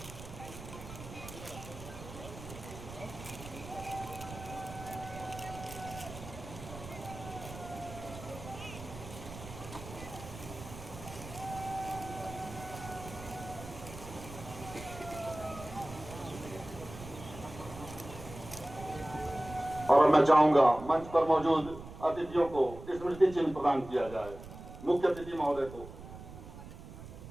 और मैं चाहूंगा मंच पर मौजूद अतिथियों को स्मृति चिन्ह प्रदान किया जाए। मुख्य अतिथि महोदय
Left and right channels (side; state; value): right; noise; rumble, 13 dB below the sound